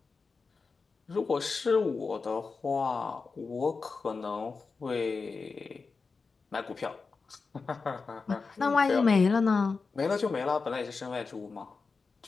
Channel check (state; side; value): quieter; right; 4.5 dB